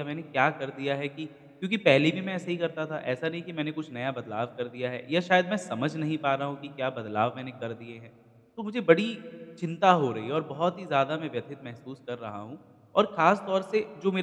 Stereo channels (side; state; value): both; identical; correlation 1.00